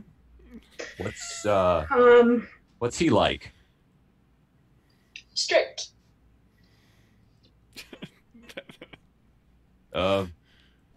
What's he like? Strict.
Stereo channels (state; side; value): identical; both; correlation 1.00